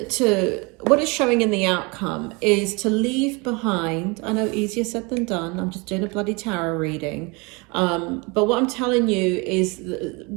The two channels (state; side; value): quieter; left; 28.3 dB